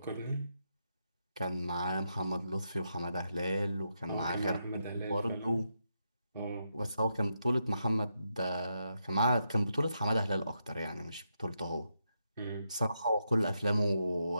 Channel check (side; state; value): both; inverted; correlation -0.83